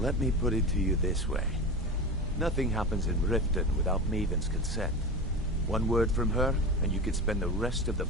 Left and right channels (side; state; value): both; normal; correlation 0.26